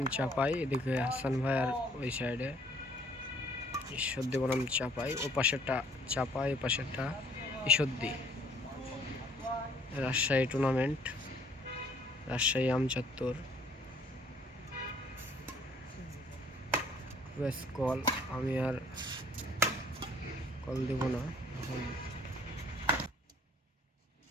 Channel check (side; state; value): both; normal; correlation 0.59